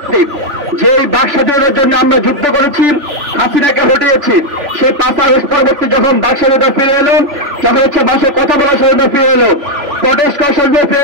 যে বাক স্বাধীনতার জন্য আমরা যুদ্ধ করেছি, হাসিনাকে হটিয়েছি, সেই 5 আগস্ট পরবর্তী যখন বাক স্বাধীনতা ফিরে এলো, যখন ভাষায় কথা বলার স্বাধীনতা ফিরে এলো, প্রটেস্ট করার স্বাধীনতা ফিরে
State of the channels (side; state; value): left; late; 3.4 ms